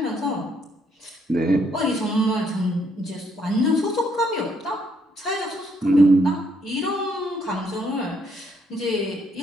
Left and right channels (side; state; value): both; normal; correlation 0.70